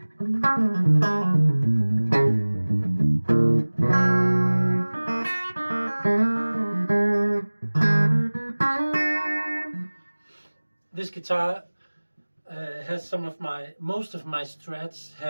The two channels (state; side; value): inverted; both; correlation -1.00